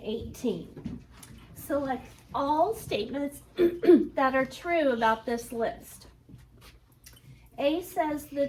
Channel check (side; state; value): both; identical; correlation 1.00